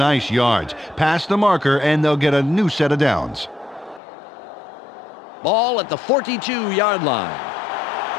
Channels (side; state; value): right; drops out; at 4.0 s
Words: yards. Pass the marker, and they'll get a new set of downs. Ball at the 42-yard line.